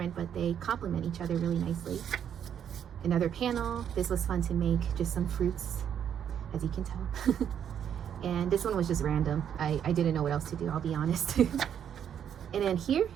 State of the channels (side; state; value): left; quieter; 8.9 dB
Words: but they complement each other really nicely. Another panel. This was fun to make, just some fruits, as you can tell. And this one was just random. I didn't know what else to do, I'll be honest. And then here,